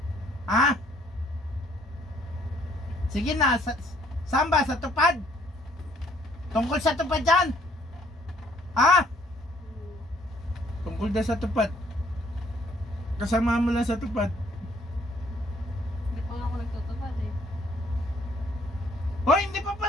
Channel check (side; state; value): both; normal; correlation 0.63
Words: Ha? Sige na, saan ba? Sa tupad? Tungkol sa tupad dyan? Ha? Tungkol na sa tupad. Kasama mo lang sa tupad. Hindi pa nga ako nagtutupad eh. Hoy, hindi pa